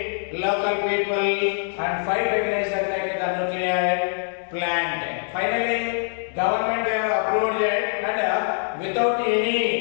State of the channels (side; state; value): right; silent; 62 dB below the other